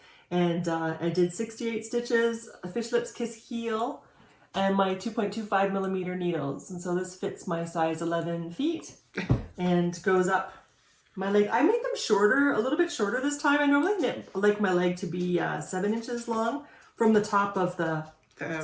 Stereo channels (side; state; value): both; identical; correlation 1.00